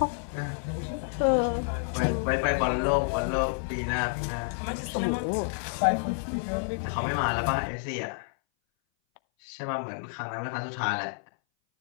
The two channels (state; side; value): silent; right; 58 dB below the other